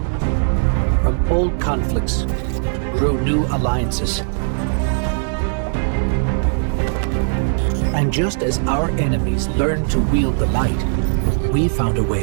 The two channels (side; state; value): left; silent; 67 dB below the other